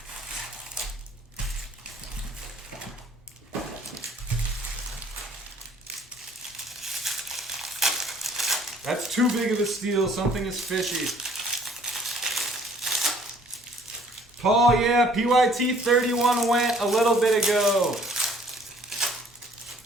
That's too big of a steal. Something is fishy. Paul, yeah, PYT 31 went a little bit ago.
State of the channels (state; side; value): normal; both; correlation 0.58